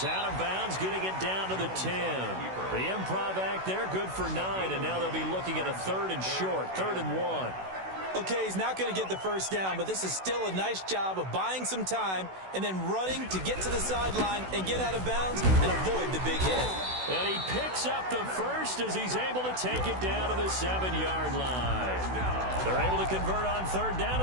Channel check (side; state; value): left; late; 16 ms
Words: out of bounds, getting it down to the 10. The improv act there, good for 9. And now they'll be looking at a 3rd and short, 3rd and 1. Okay, he's not going to get the 1st down, but this is still a nice job of buying some time and then running to get to the sideline and get out of bounds and avoid the big hit. And he picks up the 1st as he's able to take it down to the 7-yard line. They're able to convert on 3rd down,